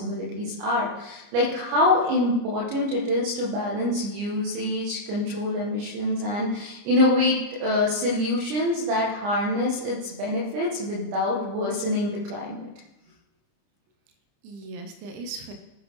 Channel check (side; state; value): left; late; 30 ms